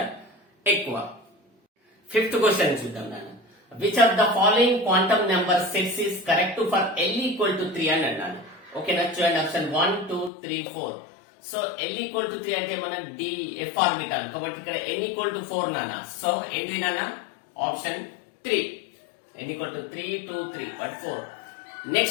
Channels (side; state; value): right; drops out; at 10.3 s